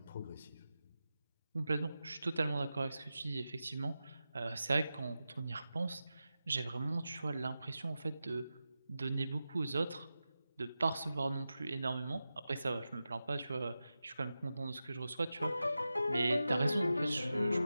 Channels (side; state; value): both; inverted; correlation -0.92